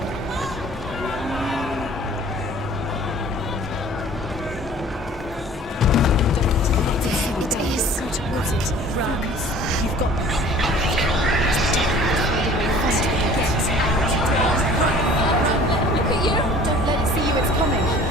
It is. Go towards it. Run. You've got this. Look at you. Don't let it see you. It's coming.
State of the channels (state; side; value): normal; both; correlation 0.49